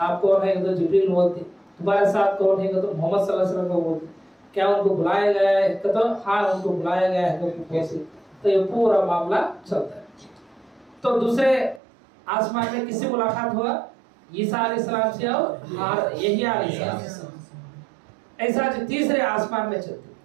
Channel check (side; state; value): left; drops out; at 11.8 s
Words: کون ہے تو جبریل بولتے، تمہارے ساتھ کون ہے تو محمد صلی اللہ علیہ وسلم کو بولتے، کیا ان کو بلایا گیا ہے تو ہاں ان کو بلایا گیا ہے، تو یہ پورا معاملہ چلتا ہے۔ تو دوسرے آسمان میں کس سے ملاقات ہوا؟ عیسیٰ علیہ السلام سے اور یحییٰ علیہ السلام۔ ایسا جو تیسرے آسمان میں چلتی،